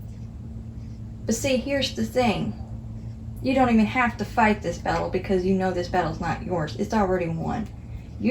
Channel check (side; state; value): both; identical; correlation 1.00